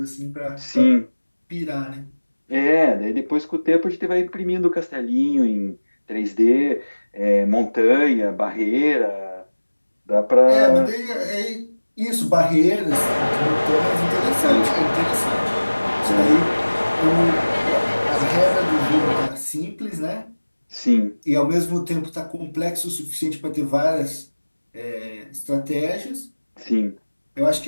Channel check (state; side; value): inverted; both; correlation -1.00